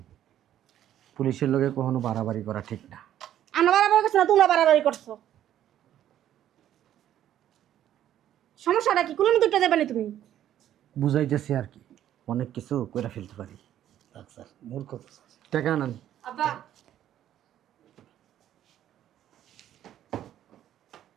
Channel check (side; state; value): left; quieter; 11.4 dB